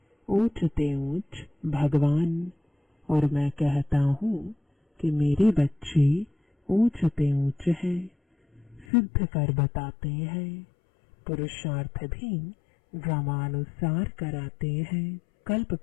ऊंच ते ऊंच भगवान, और मैं कहता हूँ कि मेरे बच्चे ऊंच ते ऊंच है। सिद्ध कर बताते हैं, पुरुषार्थ भी ड्रामानुसार कराते हैं। कल्प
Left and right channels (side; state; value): right; drops out; at 8.8 s